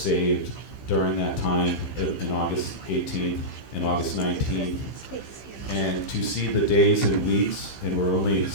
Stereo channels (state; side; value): late; right; 15 ms